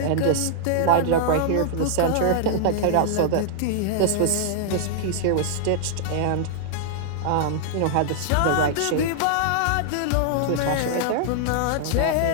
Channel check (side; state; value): both; different; correlation -0.01